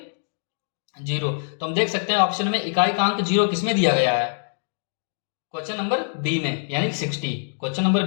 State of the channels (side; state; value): right; silent; 63 dB below the other